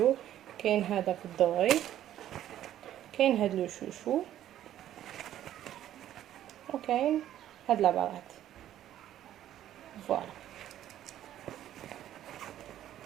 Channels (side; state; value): left; quieter; 12.0 dB